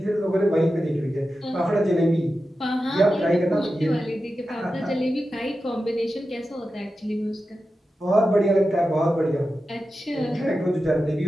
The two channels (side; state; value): both; normal; correlation 0.92